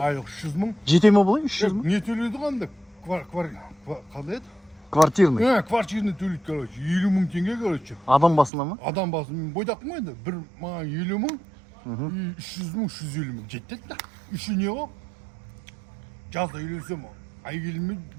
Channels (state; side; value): drops out; left; at 8.5 s